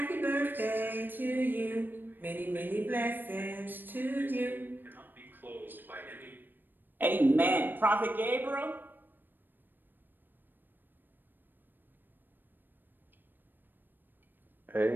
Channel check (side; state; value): left; late; 0.093 ms